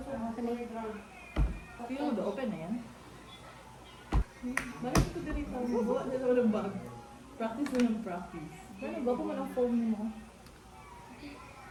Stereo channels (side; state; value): both; identical; correlation 1.00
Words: mo, open na yan. Balik ko dito. Buwa na naman ang bag. Practice na ng practice. Ano ba kung anong phone mo?